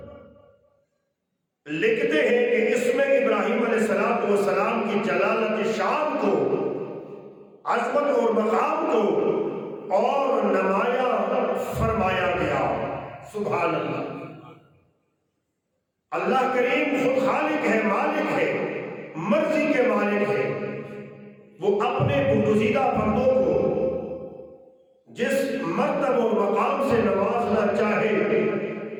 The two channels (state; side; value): identical; both; correlation 1.00